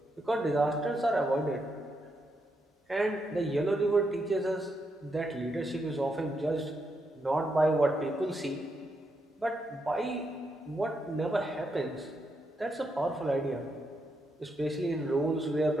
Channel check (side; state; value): both; normal; correlation 0.81